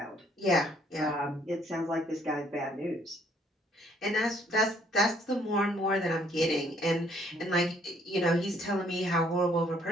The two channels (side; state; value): both; normal; correlation 0.64